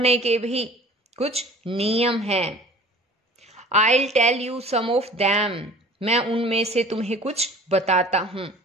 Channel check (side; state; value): both; normal; correlation 0.45